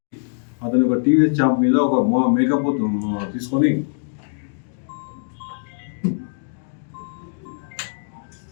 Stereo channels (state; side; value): silent; right; digital silence